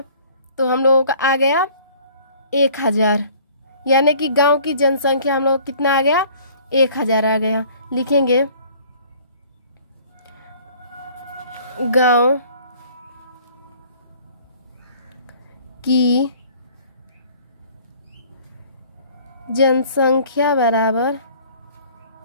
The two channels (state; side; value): inverted; both; correlation -0.53